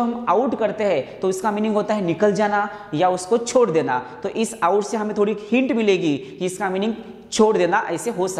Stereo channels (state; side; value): identical; both; correlation 1.00